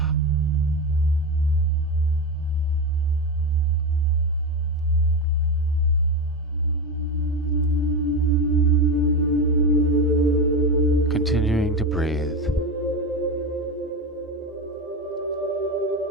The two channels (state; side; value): normal; both; correlation 0.18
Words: Continuing to breathe.